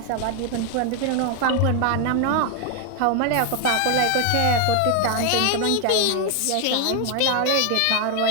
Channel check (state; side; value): different; both; correlation 0.01